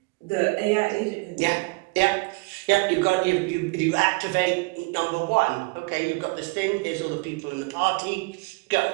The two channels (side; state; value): left; quieter; 26.8 dB